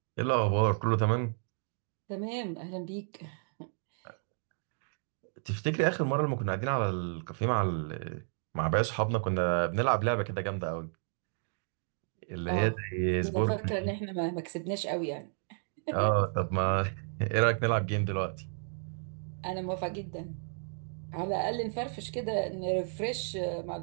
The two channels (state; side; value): silent; left; 56 dB below the other